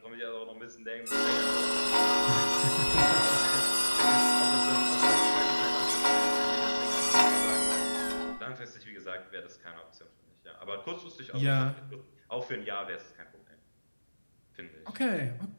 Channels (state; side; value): inverted; both; correlation -1.00